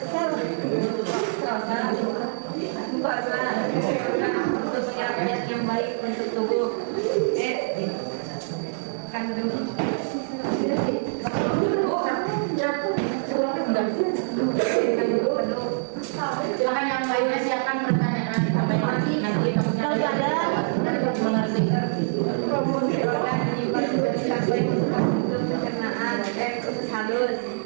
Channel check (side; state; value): left; silent; 62 dB below the other